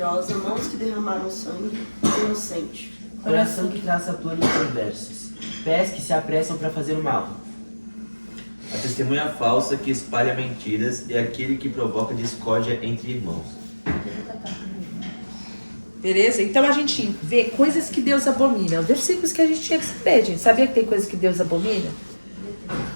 mãos que derramaram sangue, inocente. Coração que traça planos perversos, pés que se apressam para fazer o mal. A testemunha falsa que espalha mentiras e aquele que provoca discórdia entre irmãos. Beleza? Então a gente vê coisas que Deus abomina. Versículos que a gente tinha que saber, gente. Sabia que tem coisas que Deus abomina?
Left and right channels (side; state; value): both; inverted; correlation -1.00